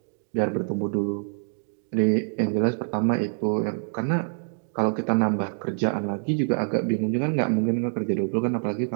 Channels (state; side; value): silent; left; digital silence